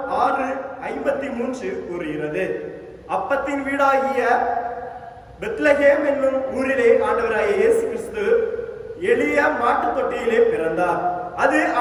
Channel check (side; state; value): both; identical; correlation 1.00